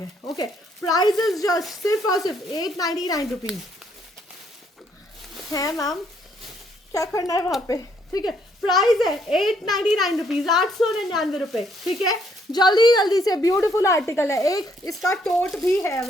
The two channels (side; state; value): both; normal; correlation 0.69